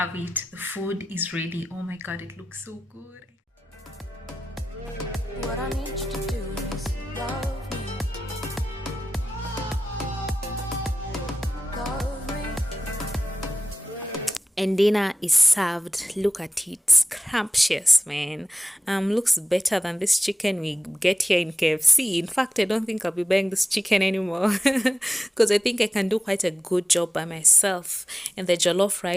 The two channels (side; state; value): both; normal; correlation 0.94